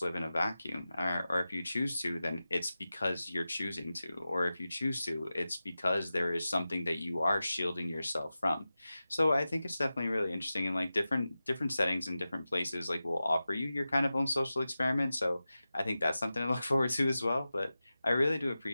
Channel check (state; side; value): inverted; both; correlation -0.94